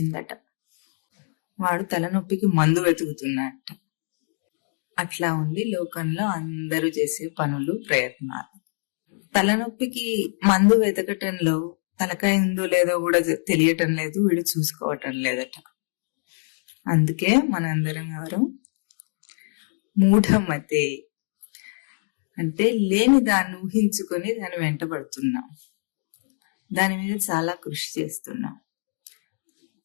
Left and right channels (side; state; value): right; silent; 62 dB below the other